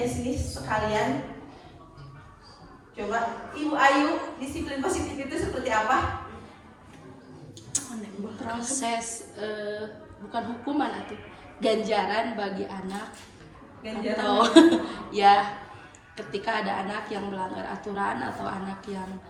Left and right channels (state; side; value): identical; both; correlation 1.00